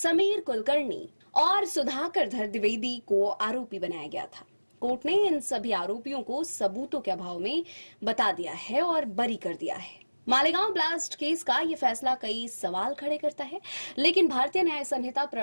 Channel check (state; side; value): inverted; both; correlation -1.00